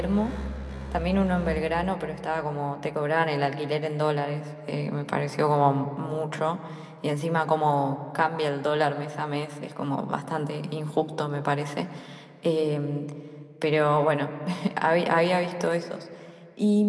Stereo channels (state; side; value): identical; both; correlation 1.00